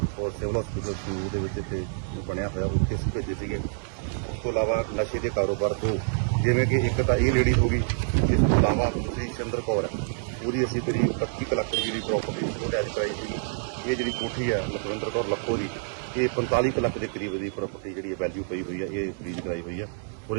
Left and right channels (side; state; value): left; silent; 60 dB below the other